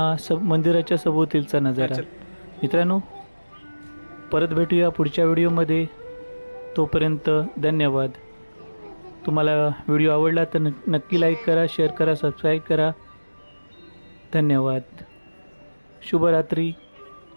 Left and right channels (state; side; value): inverted; both; correlation -1.00